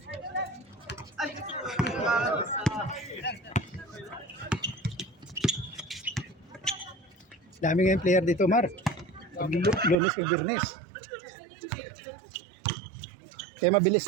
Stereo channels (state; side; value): drops out; left; at 10.0 s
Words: Dami ngayong player dito, Mar. Lunes kay Birnes. Kaya mabilis